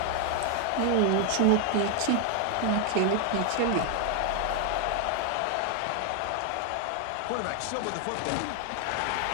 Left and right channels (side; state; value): both; different; correlation 0.01